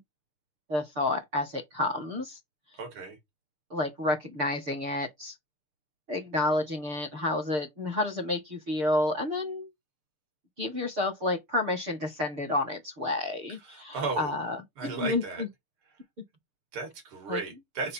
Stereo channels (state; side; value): late; left; 6.7 ms